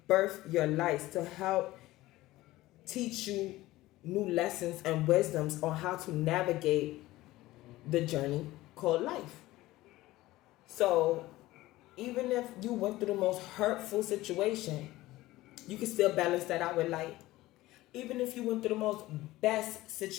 birth your life, to help teach you new lessons and wisdoms on how to navigate the journey called life. So even if you went through the most hurtful situation, you can still balance that out with light. Even if you went through the most best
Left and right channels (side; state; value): right; quieter; 17.5 dB